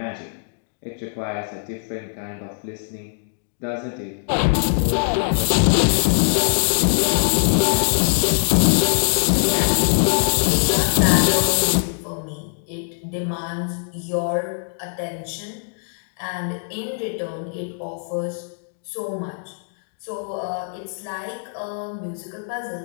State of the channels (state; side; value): silent; right; digital silence